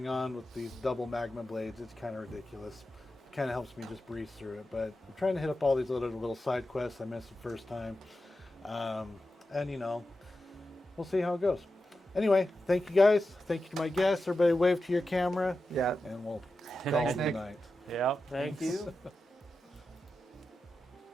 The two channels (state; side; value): normal; both; correlation 0.91